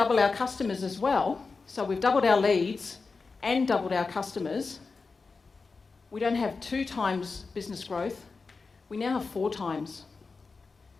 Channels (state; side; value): quieter; right; 4.3 dB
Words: our customers as well, so we've doubled our leads and doubled our customers, we don't have 2 times business growth, we now have 4 times.